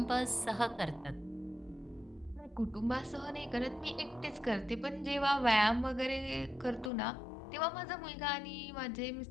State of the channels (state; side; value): drops out; right; at 6.9 s